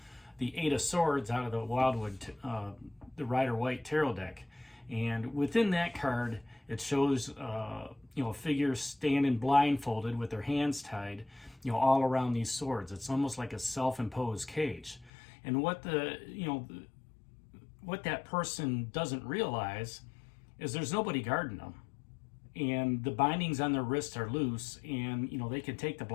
Eight of Swords out of the Wildwood, the Rider-Waite Tarot deck. And within that card, it shows a figure standing blindfolded with their hands tied, all around these swords. It's almost like a self-imposed cage. And what what that person doesn't realize is there's nobody guarding them, and the bindings on their wrists are loose, and they can take the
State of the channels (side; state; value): right; drops out; at 15.1 s